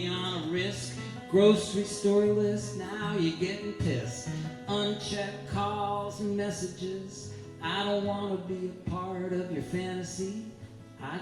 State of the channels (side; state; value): both; identical; correlation 1.00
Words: on a risk. Grocery store list, now you're getting pissed. Unchecked calls and messages. I don't want to be a part of your fantasy. I